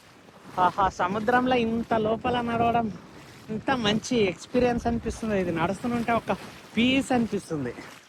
ఆహా, సముద్రంలో ఇంత లోపల నడవడం ఇంత మంచి ఎక్స్పీరియన్స్ అనిపిస్తుంది. ఇది నడుస్తుంటే ఒక పీస్ అనిపిస్తుంది.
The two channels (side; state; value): both; identical; correlation 1.00